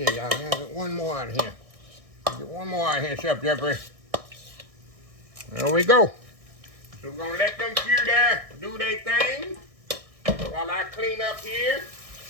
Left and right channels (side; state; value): left; late; 1.6 ms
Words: y'all. I'll get one more out of here. Get one more out of here, Chef Jeffrey. There we go. So we're going to let them few there do their thing while I clean up here.